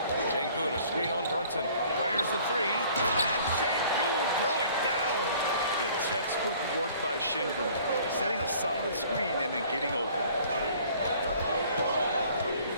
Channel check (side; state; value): both; inverted; correlation -0.54